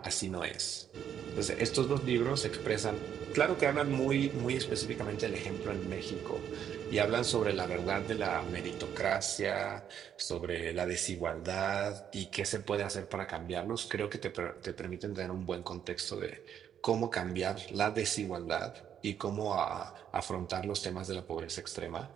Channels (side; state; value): left; quieter; 9.1 dB